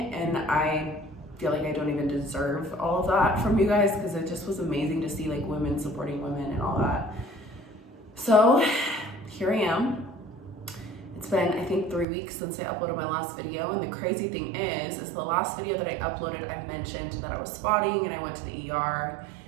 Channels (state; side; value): drops out; left; at 12.1 s